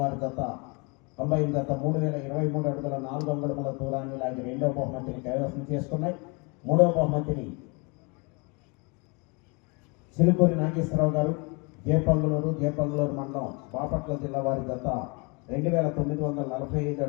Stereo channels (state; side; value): quieter; right; 31.0 dB